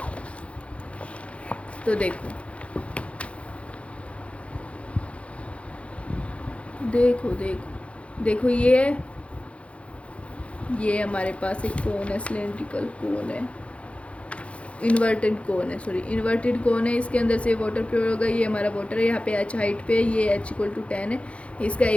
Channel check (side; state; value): right; late; 0.062 ms